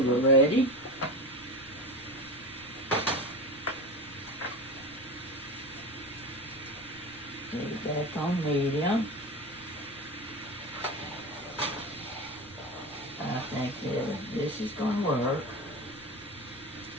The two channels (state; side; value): noise; left; rumble, 27 dB below the sound